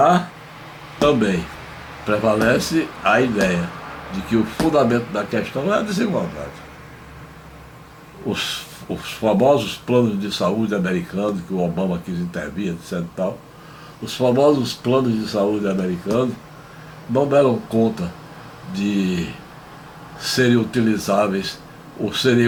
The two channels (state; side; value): identical; both; correlation 1.00